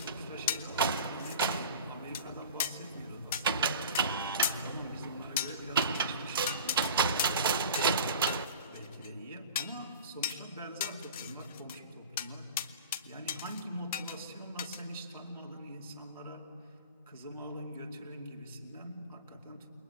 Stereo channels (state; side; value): inverted; both; correlation -0.37